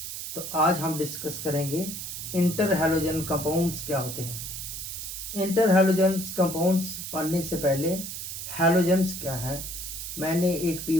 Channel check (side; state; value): right; noise; hiss, 7 dB below the sound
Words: तो आज हम डिस्कस करेंगे इंटर हैलोजन कंपाउंड्स क्या होते हैं। इंटर हैलोजन्स कंपाउंड्स पढ़ने से पहले हैलोजन्स क्या है, मैंने एक पी